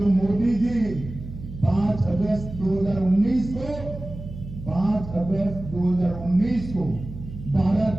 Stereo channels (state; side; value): noise; right; hum, 12 dB below the sound